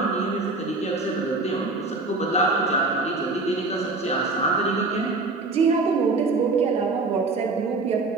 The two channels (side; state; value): left; quieter; 3.5 dB